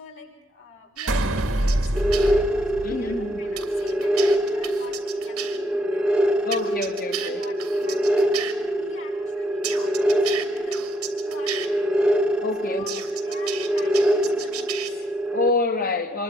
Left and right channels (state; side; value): normal; both; correlation 0.74